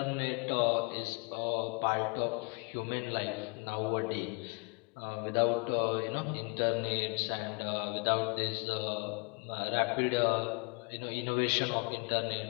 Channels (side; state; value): right; quieter; 32.4 dB